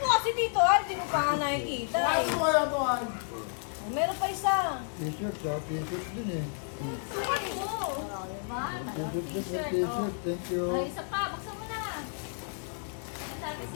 kasi dito, hindi mo pa nga nakikita. Wala to, Meron pa isa. T-shirt, t-shirt din eh. Sukat mo! Diba? T-shirt, thank you. Ay, isa pa. Buksan mo na. Sabi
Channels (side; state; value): right; silent; 57 dB below the other